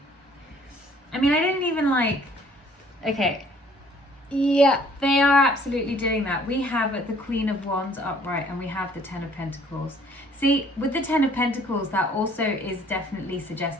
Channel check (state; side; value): normal; both; correlation 0.58